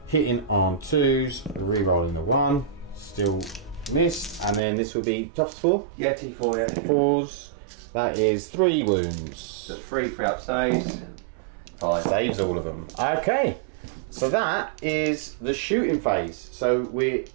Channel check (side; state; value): left; drops out; at 4.6 s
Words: hitting on 2s, re-rolling the 1, still missed, and then this will be toughest 4. Yeah, T4. Yeah. 4s. That is 3 wounds. So 3 up saves. 5 Saves all of them. Okay. So that is the shooting phase. So